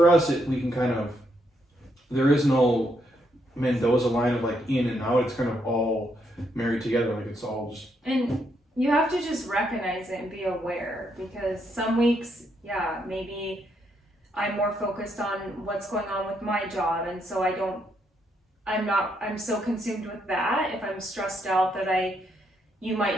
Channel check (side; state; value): both; normal; correlation 0.76